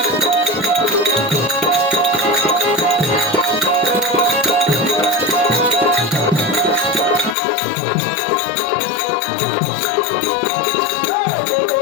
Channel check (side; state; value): right; drops out; at 7.4 s